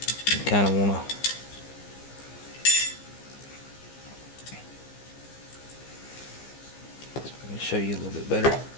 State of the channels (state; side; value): late; right; 15 ms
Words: You kind of want to let me show you a little bit better.